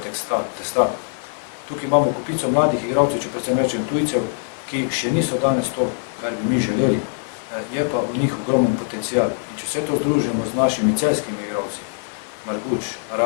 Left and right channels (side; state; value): right; silent; digital silence